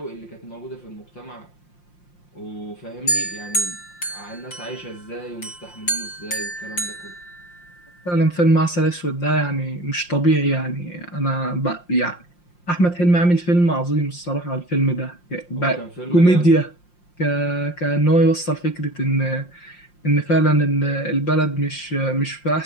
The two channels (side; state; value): right; late; 5.7 ms